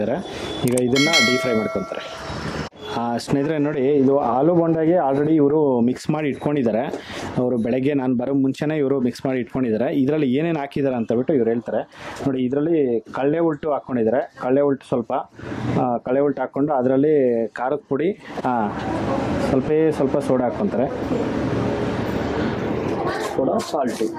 ಈಗ ಇದನ್ನು ಡೀಪ್ ಫ್ರೈ ಮಾಡ್ಕೊತಾರೆ. ಸ್ನೇಹಿತರೆ ನೋಡಿ, ಇದು ಆಲೂ ಬೋಂಡಾಗೆ ಆಲ್ರೆಡಿ ಇವರು ಮಿಕ್ಸ್ ಮಾಡಿ ಇಟ್ಕೊಂಡಿದ್ದಾರೆ. ಅವರು ಬೆಳಗ್ಗೆ ನಾನು ಬರೋ ಮುಂಚೆನೇ ಇವರು ಮಿಕ್ಸ್ ಮಾಡಿ ಇಟ್ಕೊಂಡಿದ್ದಾರೆ. ಇದರಲ್ಲಿ ಏನೇನು ಹಾಕಿದ್ದಾರೆ ಅಂತ ಬಿಟ್ಟು ಇವ್ರು ಹೇಳ್ತಾರೆ. ನೋಡಿ ಇದರಲ್ಲಿ ಕಡಲೆ ಉಲ್ಟು ಹಾಕ್ಕೊಂಡಿದ್ದಾರೆ. ಕಡಲೆ ಉಲ್ಟು ಕಡಲೆ ಉಲ್ಟು ಹಾಕ್ಕೊಂಡು ಅದರಲ್ಲಿ ಖಾರದ ಪುಡಿ, ಸ್ವಲ್ಪ ಸೋಡಾ ಹಾಕ್ಕೊತಾರೆ.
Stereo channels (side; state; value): both; identical; correlation 1.00